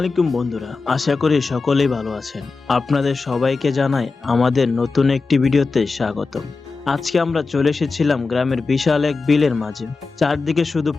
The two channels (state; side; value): quieter; right; 4.1 dB